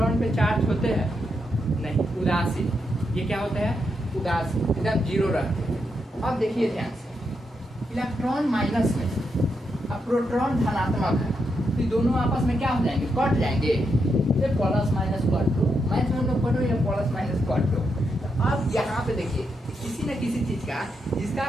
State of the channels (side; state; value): both; normal; correlation 0.82